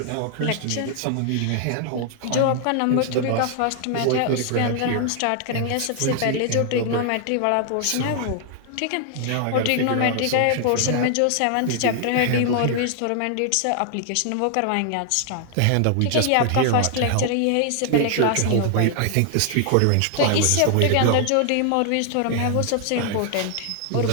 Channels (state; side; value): different; both; correlation 0.00